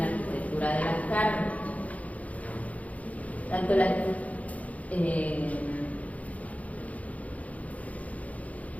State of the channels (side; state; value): right; late; 0.069 ms